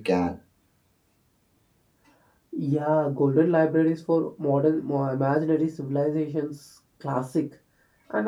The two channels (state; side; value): identical; both; correlation 1.00